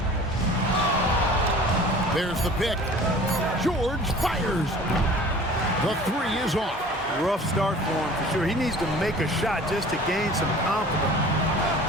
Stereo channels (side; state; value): both; normal; correlation 0.45